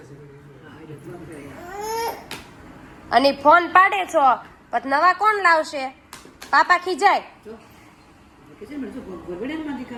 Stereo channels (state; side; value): identical; both; correlation 1.00